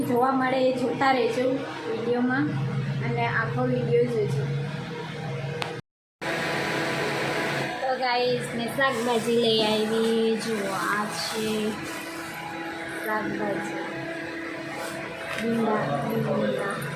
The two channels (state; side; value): identical; both; correlation 1.00